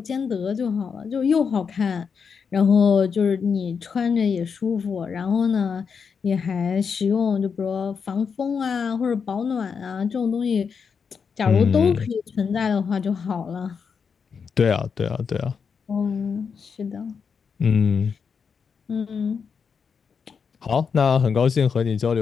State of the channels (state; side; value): quieter; right; 6.1 dB